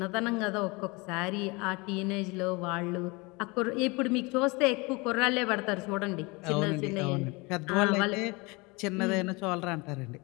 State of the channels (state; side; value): quieter; right; 26.3 dB